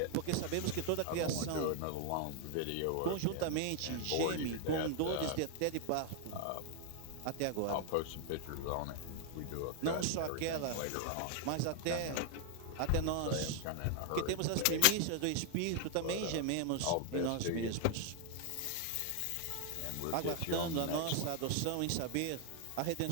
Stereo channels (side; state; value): both; different; correlation 0.00